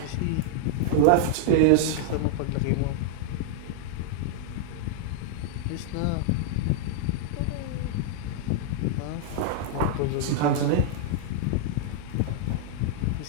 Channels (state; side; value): different; both; correlation -0.01